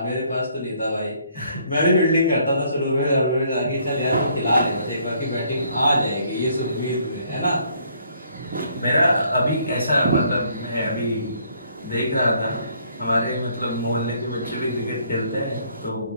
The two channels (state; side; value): inverted; both; correlation -0.65